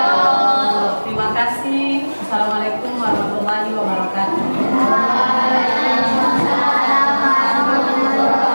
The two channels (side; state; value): both; inverted; correlation -1.00